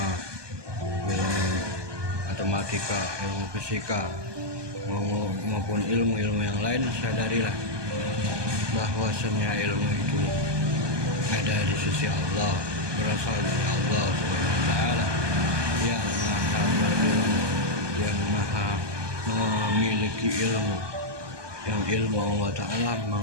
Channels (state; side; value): late; left; 1.2 ms